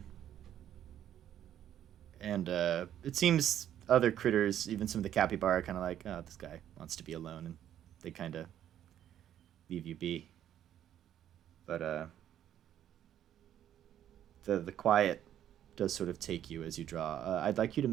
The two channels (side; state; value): left; quieter; 10.8 dB